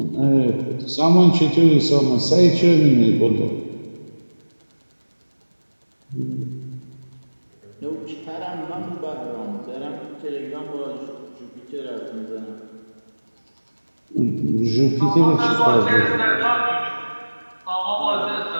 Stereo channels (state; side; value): inverted; both; correlation -1.00